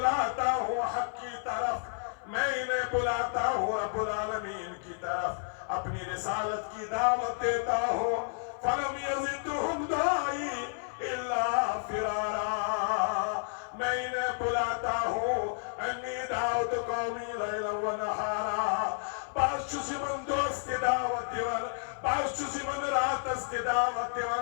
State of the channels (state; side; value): silent; right; 55 dB below the other